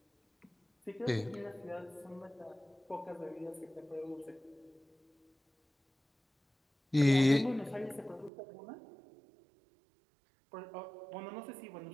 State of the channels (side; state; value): left; drops out; at 8.3 s